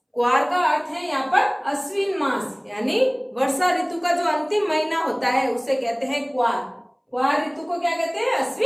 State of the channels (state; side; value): identical; both; correlation 1.00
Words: कुआर का अर्थ है यहाँ पर अश्विन मास, यानी वर्षा ऋतु का जो अंतिम महीना होता है उसे कहते हैं कुआर। कुआर ऋतु को क्या कहते हैं?